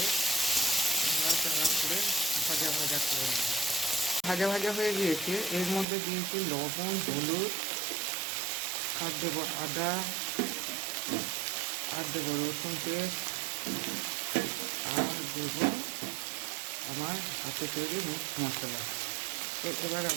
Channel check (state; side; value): drops out; left; at 5.9 s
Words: ভাজা ভাজা করে নেব। ভাজা ভাজা হয়ে গিয়েছে। এর মধ্যে দিয়েছি লবণ, হলুদ, আর দেবো আদা, আর দেবো রসুন পেস্ট, আর দেবো আমার হাতে তৈরি মিক্স মশলা। তো এবার